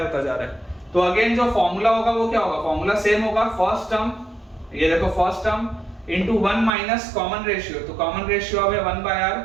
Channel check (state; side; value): drops out; left; at 6.7 s